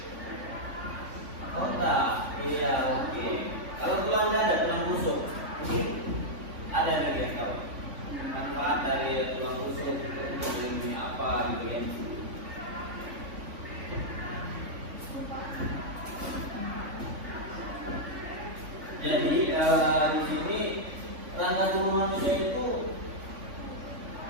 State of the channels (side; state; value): left; late; 3.5 ms